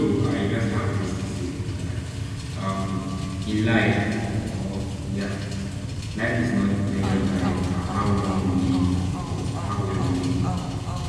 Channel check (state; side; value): identical; both; correlation 1.00